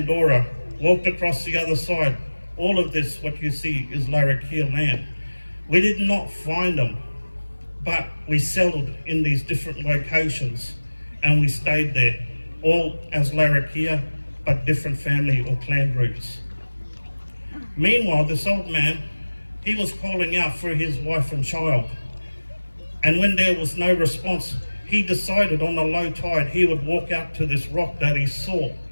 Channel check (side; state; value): both; inverted; correlation -1.00